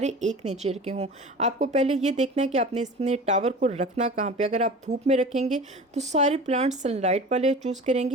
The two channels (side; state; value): both; normal; correlation 0.37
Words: एक नेचर के हों। आपको पहले ये देखना है कि आपने इसमें टावर को रखना कहाँ पर। अगर आप धूप में रखेंगे तो सारे प्लांट्स सनलाइट वाले चूज़ करेंगे,